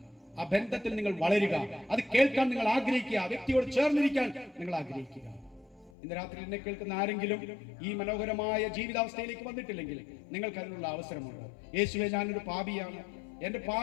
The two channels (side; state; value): right; drops out; at 5.9 s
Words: ആ ബന്ധത്തിൽ നിങ്ങൾ വളരുക, അത് കേൾക്കാൻ നിങ്ങൾ ആഗ്രഹിക്കുക, വ്യക്തിയോട് ചേർന്നിരിക്കാൻ നിങ്ങൾ ആഗ്രഹിക്കുക. ഇന്ന് രാത്രി എന്നെ കേൾക്കുന്ന ആരെങ്കിലും ഈ മനോഹരമായ ജീവിതാവസ്ഥയിലേക്ക് വന്നിട്ടില്ലെങ്കിൽ നിങ്ങൾക്ക് അതിനുള്ള അവസരമുണ്ട്. യേശുവേ, ഞാനൊരു പാപിയാണ്, എന്റെ